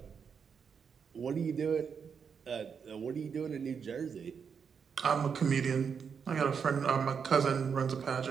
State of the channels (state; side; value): quieter; left; 6.5 dB